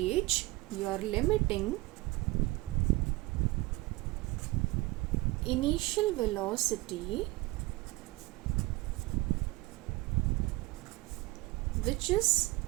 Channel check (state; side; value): quieter; left; 21.4 dB